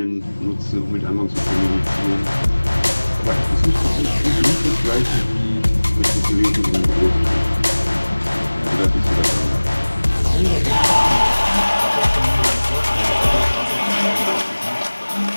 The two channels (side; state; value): both; inverted; correlation -1.00